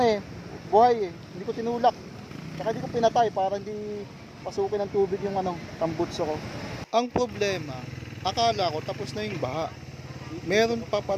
eh, buhay eh, hindi ko tinulak. Saka hindi ko pinatay para hindi pasukin ng tubig yung tambutso ko. Ang problema, akala ko tapos na yung baha. Meron pa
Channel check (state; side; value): identical; both; correlation 1.00